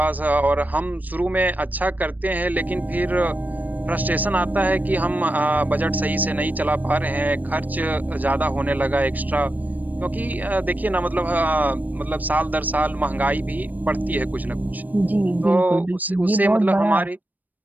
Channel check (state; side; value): late; left; 0.083 ms